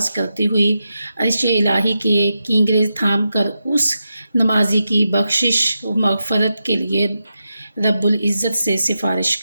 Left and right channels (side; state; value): both; inverted; correlation -0.88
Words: کرتی ہوئی عرش الہی کے کینگرے تھام کر اس نمازی کی بخشش و مغفرت کے لیے رب العزت سے سفارش